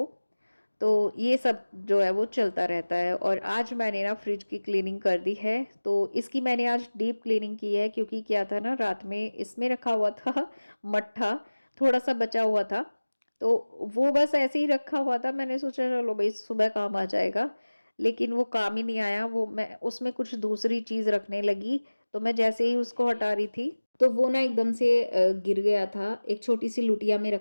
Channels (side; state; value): both; inverted; correlation -1.00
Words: तो ये सब जो है वो चलता रहता है। और आज मैंने ना फ्रिज की क्लीनिंग कर दी है। तो इसकी मैंने आज डीप क्लीनिंग की है, क्योंकि क्या था ना, रात में इसमें रखा हुआ था मट्ठा, थोड़ा-सा बचा हुआ था। तो वो बस ऐसे ही रखा हुआ था, मैंने सोचा चलो भई सुबह काम आ जाएगा। लेकिन वो काम ही नहीं आया, वो मैं उसमें कुछ दूसरी चीज़ रखने लगी, तो मैं जैसे ही उसको हटा रही थी, तो वो ना एकदम से गिर गया था। एक छोटी-सी लुटिया में